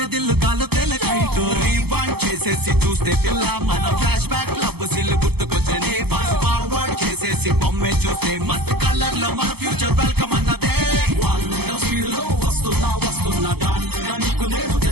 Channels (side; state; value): left; late; 0.97 ms